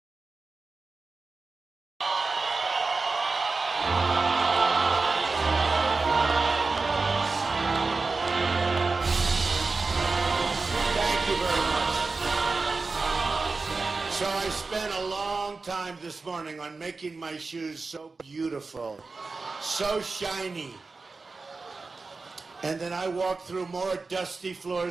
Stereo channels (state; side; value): quieter; left; 4.0 dB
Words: Thank you very much. So I spent a long time this morning on making my shoes so beautiful, so shiny. And then I walked through more dusty